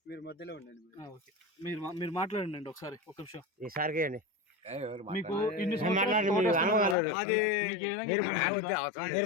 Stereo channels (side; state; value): right; drops out; at 7.0 s